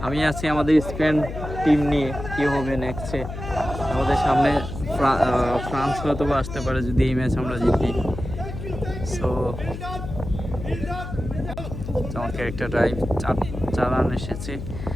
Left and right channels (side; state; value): left; noise; hum, 8 dB below the sound